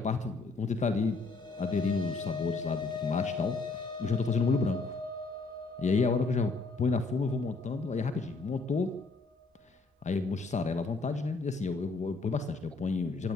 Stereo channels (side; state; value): right; quieter; 3.8 dB